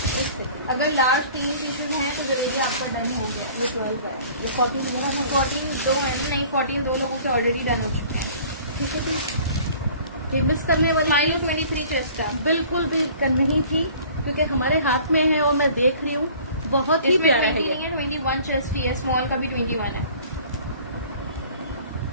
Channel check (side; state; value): both; inverted; correlation -0.49